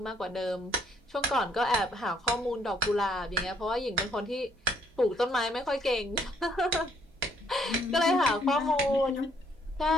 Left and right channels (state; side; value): normal; both; correlation 0.67